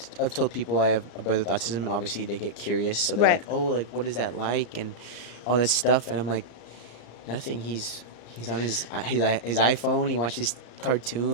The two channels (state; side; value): late; right; 34 ms